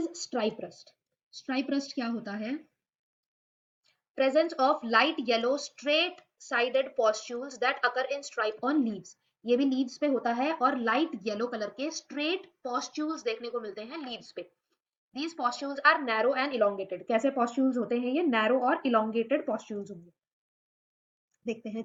stripe rust. Stripe rust क्या होता है, presence of light yellow straight sided pustules that occur in stripe on leaves। ये भी लीव्स पे होता है और लाइट येलो कलर के स्ट्रेट पॉस्ट्यूल्स देखने को मिलते हैं लीव्स पे। These pustules are narrow and elongated। कैसे पॉस्ट्यूल्स होते हैं ये, नैरो और इलोंगेटेड पॉस्ट्यूल्स होंगे। देखते हैं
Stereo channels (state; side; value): identical; both; correlation 1.00